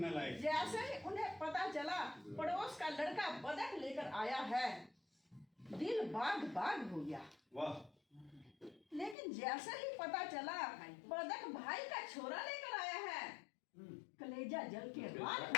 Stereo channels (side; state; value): right; drops out; at 9.2 s